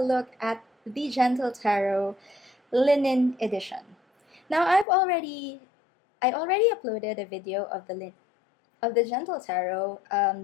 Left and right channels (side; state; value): right; drops out; at 4.9 s